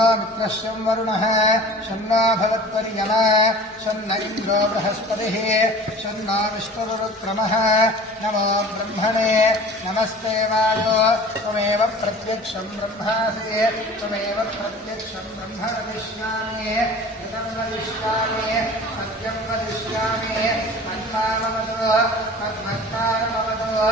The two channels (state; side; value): normal; both; correlation 0.42